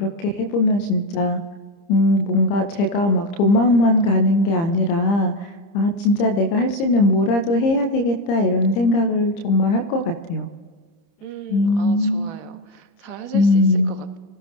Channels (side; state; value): right; late; 30 ms